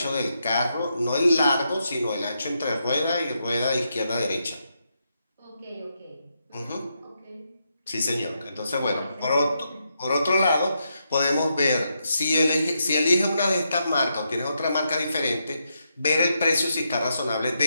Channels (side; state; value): both; inverted; correlation -0.82